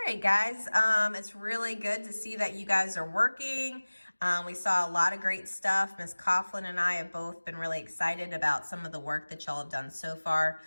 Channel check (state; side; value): inverted; both; correlation -1.00